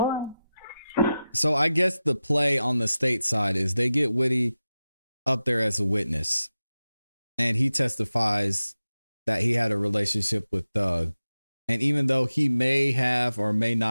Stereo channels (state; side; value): inverted; both; correlation -0.94